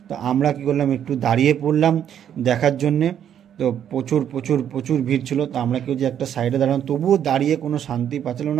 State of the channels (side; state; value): left; quieter; 9.5 dB